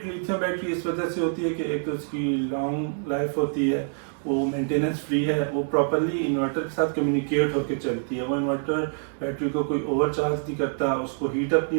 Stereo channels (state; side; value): silent; left; digital silence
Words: लिथियम बैटरी इस वजह से होती है कि एक तो उसकी लॉन्ग लाइफ होती है, वो मेंटेनेंस फ्री है, वो प्रॉपरली इन्वर्टर के साथ कम्युनिकेट होकर चलती है, वो इन्वर्टर बैटरी को कोई ओवरचार्ज नहीं करता, उसको हीट अप